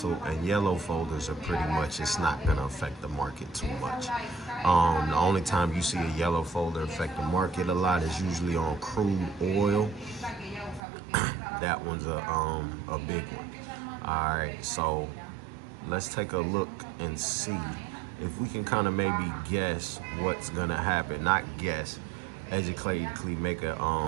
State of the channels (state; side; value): drops out; left; at 10.8 s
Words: and yellow folders are pretty much, it's not going to affect the market too much. The only time you see a yellow folder affect the market a lot is usually on crude oil. That one's a big one. All right, so let's take a look and see if we can kind of maybe guess what's going to happen. Not guess, educatively make a